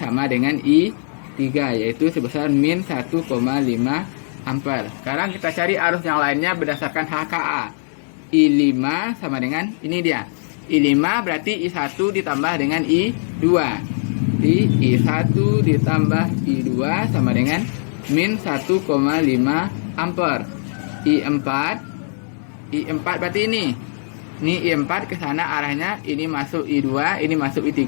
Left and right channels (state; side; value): silent; right; 63 dB below the other